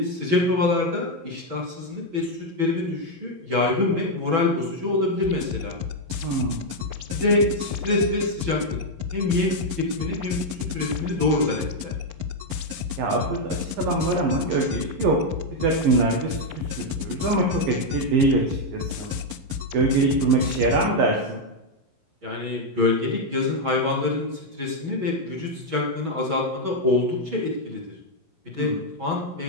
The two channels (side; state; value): left; late; 11 ms